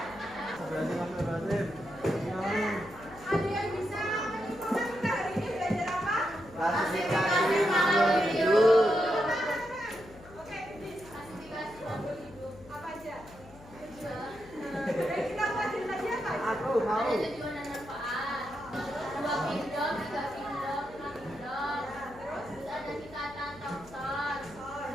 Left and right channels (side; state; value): left; noise; hum, 20 dB below the sound